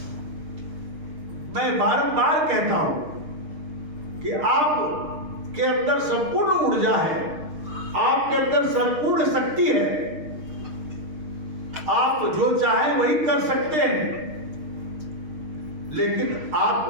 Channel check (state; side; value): late; left; 6.5 ms